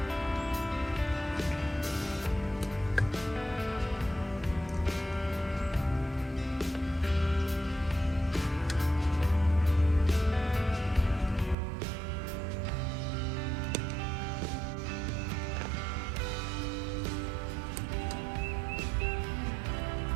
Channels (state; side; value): drops out; left; at 11.6 s